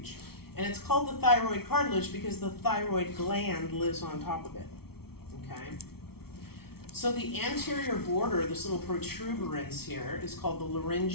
And it's called the thyroid cartilage because the thyroid gland lives on top of it, okay? So the anterior border, this little protuberance here, is called the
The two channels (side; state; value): right; late; 0.95 ms